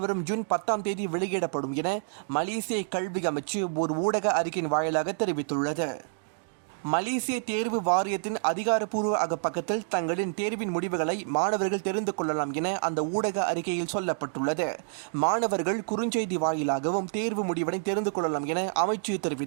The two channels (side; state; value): left; silent; digital silence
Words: ஜூன் 10 தேதி வெளியிடப்படும் என மலேசிய கல்வி அமைச்சு ஒரு ஊடக அறிக்கையின் வாயிலாக தெரிவித்துள்ளது. மலேசிய தேர்வு வாரியத்தின் அதிகாரப்பூர்வ அகப்பக்கத்தில் தங்களின் தேர்வின் முடிவுகளை மாணவர்கள் தெரிந்து கொள்ளலாம் என அந்த ஊடக அறிக்கையில் சொல்லப்பட்டுள்ளது. மாணவர்கள் குறுஞ்செய்தி வாயிலாகவும் தேர்வு முடிவினை தெரிந்து கொள்ளலாம் என அமைச்சு